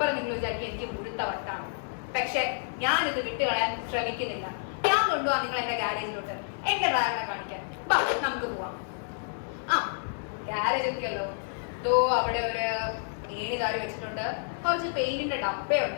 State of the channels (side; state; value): right; silent; digital silence